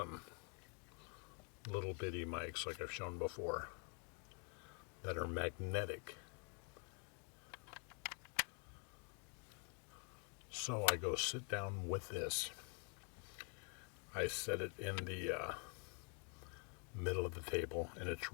little bitty mics like I've shown before that are magnetic. So I go sit down with this. I set it in the middle of the table, and it's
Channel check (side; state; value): right; quieter; 38.3 dB